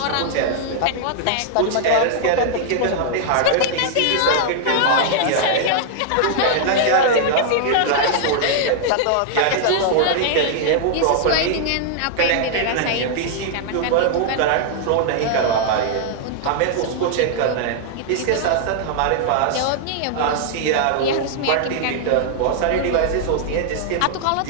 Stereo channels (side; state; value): both; different; correlation -0.01